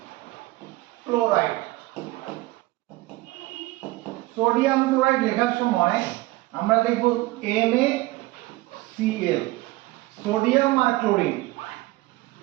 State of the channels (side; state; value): left; quieter; 19.9 dB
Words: ক্লোরাইড, সোডিয়াম ক্লোরাইড লেখার সময় আমরা লিখব NaCl, সোডিয়াম আর ক্লোরিন।